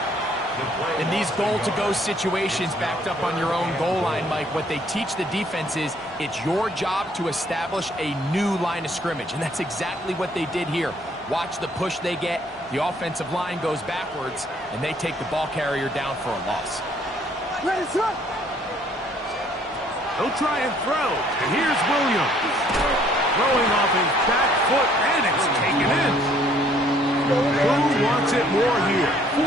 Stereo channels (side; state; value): both; normal; correlation 0.62